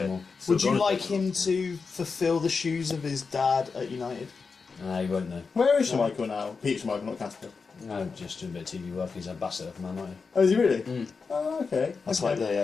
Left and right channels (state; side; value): quieter; right; 4.9 dB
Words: wall. Would you like him to fulfil the shoes of his dad at United? Nah, you won't know. Where is Michael now? Peter Michael, not Casper. No, just doing a bit of TV work. He's ambassador for Man United. Oh, is he really? Oh, okay. That's like